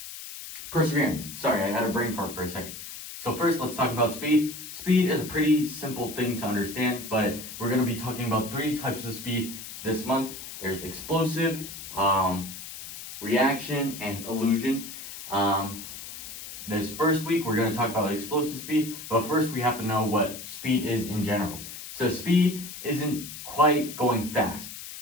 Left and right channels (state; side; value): noise; left; hiss, 11 dB below the sound